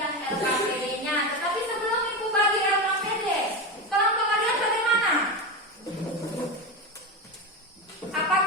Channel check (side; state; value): both; normal; correlation 0.18